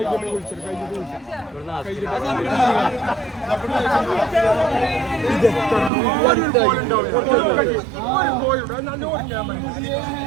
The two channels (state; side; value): drops out; left; at 5.9 s